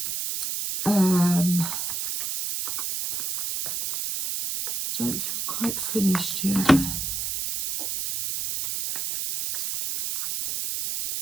Don't feel quite finished yet.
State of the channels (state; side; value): noise; right; hiss, 2 dB below the sound